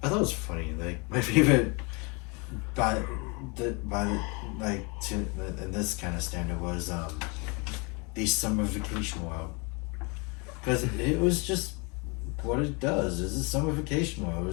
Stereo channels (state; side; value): quieter; right; 30.8 dB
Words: I thought it was funny. Like my favorite, in this kind of standard was the Summer Vacation World, because it was just what it does. It's a summer vacation world. It